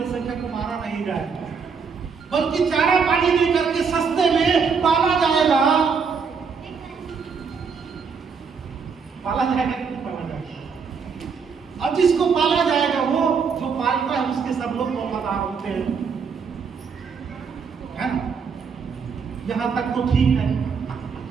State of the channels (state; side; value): quieter; left; 5.7 dB